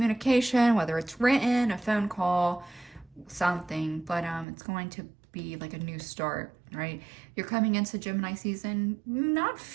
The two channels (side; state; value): left; drops out; at 4.5 s